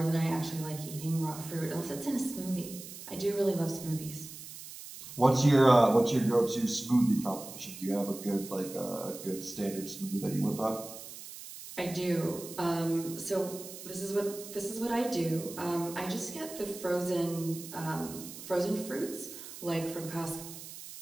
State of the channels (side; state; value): right; noise; hiss, 13 dB below the sound